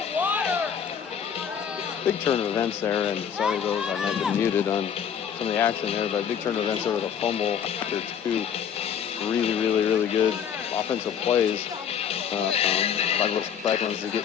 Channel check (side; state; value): right; quieter; 8.2 dB